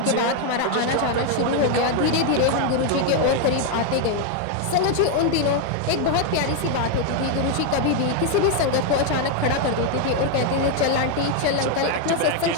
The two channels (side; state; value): both; different; correlation 0.01